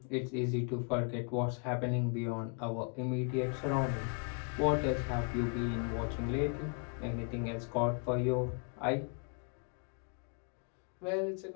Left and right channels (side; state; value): right; quieter; 39.1 dB